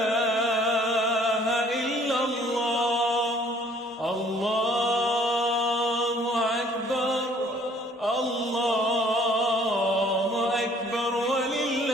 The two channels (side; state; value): both; normal; correlation 0.58